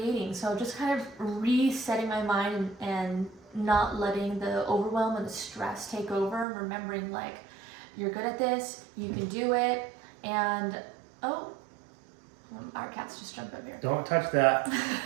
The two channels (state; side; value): drops out; left; at 6.5 s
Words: So just kind of resetting my mind and not letting the overwhelm and the stress take over, and remembering like, you're good at this, you can do it, and our cats just jumped up here. Don't touch that.